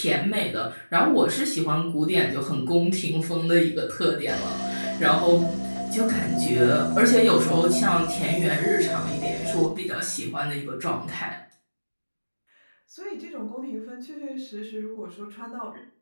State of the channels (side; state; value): both; inverted; correlation -1.00